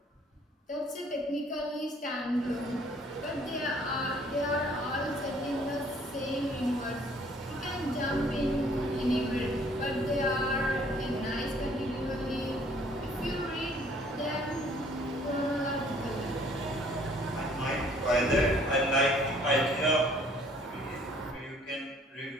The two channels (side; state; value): both; normal; correlation 0.59